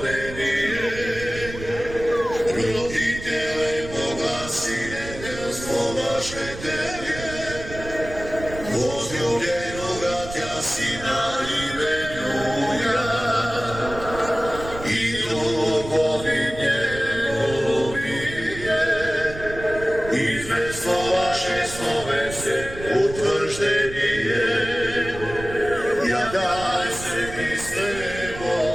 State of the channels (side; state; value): right; noise; rumble, 12 dB below the sound